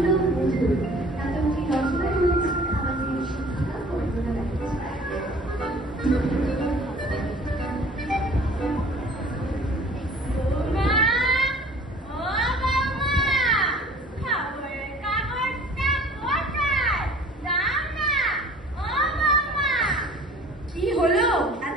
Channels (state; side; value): normal; both; correlation 0.49